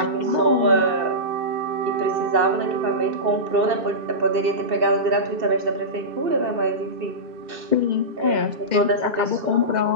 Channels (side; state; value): left; late; 2.7 ms